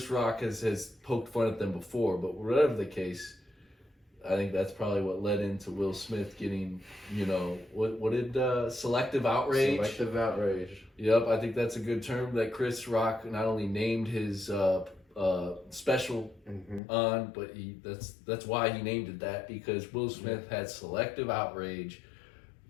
Rock has poked fun at them before, but whatever the case, I think that's probably what led into Will Smith getting, what did selective outrage? Selective outrage. Yep, I think that's a good term that Chris Rock not only named his special on, but that's why he named it that, because Will Smith had selective outrage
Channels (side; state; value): right; drops out; at 16.8 s